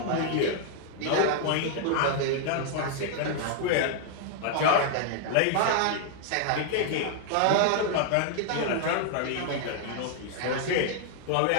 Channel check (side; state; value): both; different; correlation 0.00